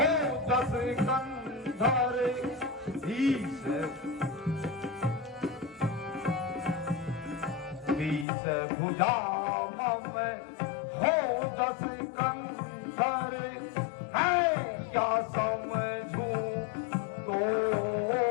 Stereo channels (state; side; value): drops out; right; at 8.2 s